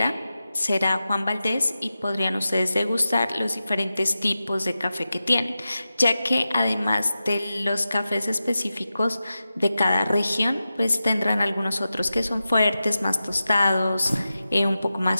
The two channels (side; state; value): both; inverted; correlation -0.93